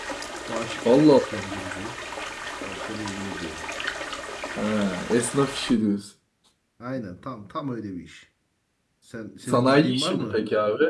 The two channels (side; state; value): both; identical; correlation 1.00